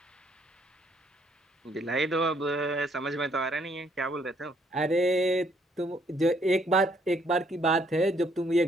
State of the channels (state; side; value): normal; both; correlation 0.68